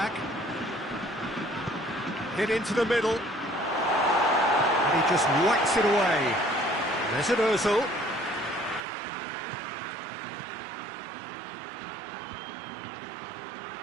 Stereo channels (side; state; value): left; drops out; at 8.8 s